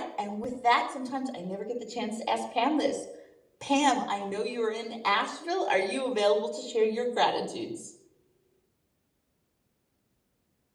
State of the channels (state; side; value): identical; both; correlation 1.00